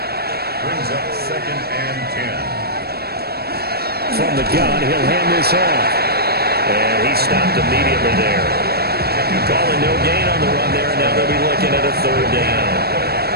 Brings up second and 10. From the gun, he'll hand this off. And he stopped immediately there. Calling no gain on the run there, and now they'll be looking at a third down.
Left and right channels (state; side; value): late; left; 0.46 ms